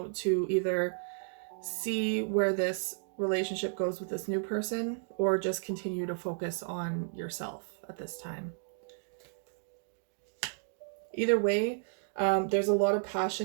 to either see where this relationship goes with this new person, or just continue to focus on yourself at this time. Either way, there's a lot of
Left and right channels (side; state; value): left; silent; digital silence